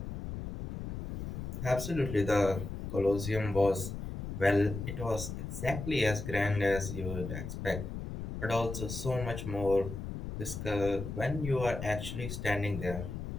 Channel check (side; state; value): left; noise; rumble, 6 dB below the sound